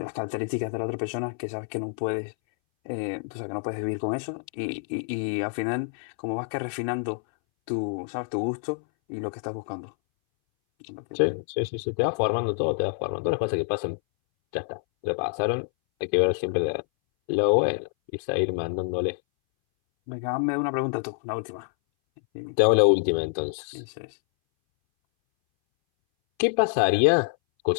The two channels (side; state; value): right; silent; 60 dB below the other